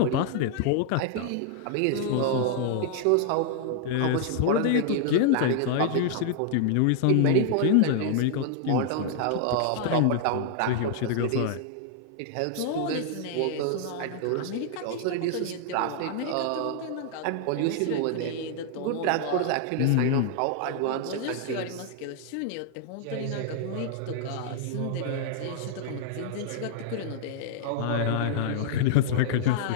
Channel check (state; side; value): different; both; correlation -0.01